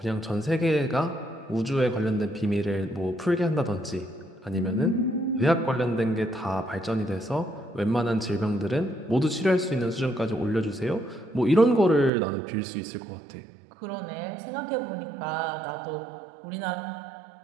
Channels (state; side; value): drops out; left; at 12.1 s